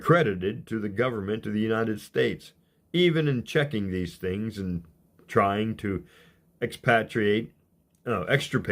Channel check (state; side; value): identical; both; correlation 1.00